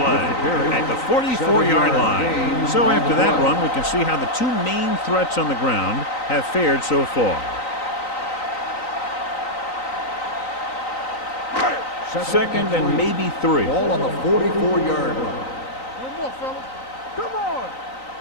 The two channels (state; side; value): late; right; 3.9 ms